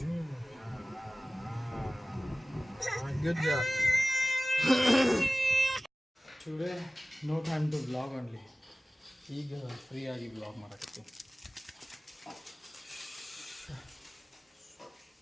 Good job. Today no time to vlog only. ಈಗ ಫ್ರೀ ಆಗಿ ವ್ಲಾಗ್ ಮಾಡಕತ್ತಿ.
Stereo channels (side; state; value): both; normal; correlation 0.97